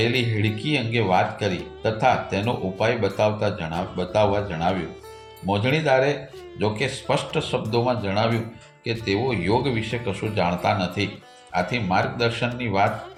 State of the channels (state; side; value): identical; both; correlation 1.00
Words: હેડકી અંગે વાત કરી તથા તેનો ઉપાય બતાવવા જણાવ્યું. મોજણીદારે જોકે સ્પષ્ટ શબ્દોમાં જણાવ્યું કે તેઓ યોગ વિશે કશું જાણતા નથી, આથી માર્ગદર્શનની વાત